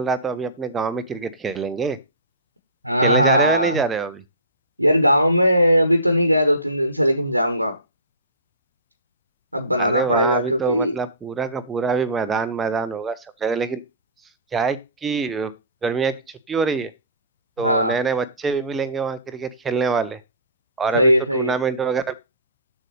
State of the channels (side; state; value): both; inverted; correlation -0.37